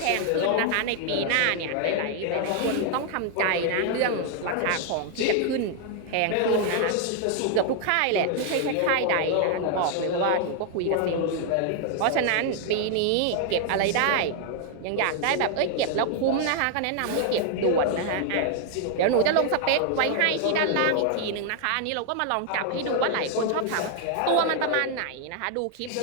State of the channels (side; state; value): both; different; correlation 0.00